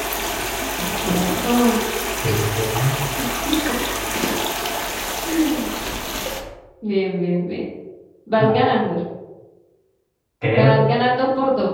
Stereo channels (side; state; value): both; identical; correlation 1.00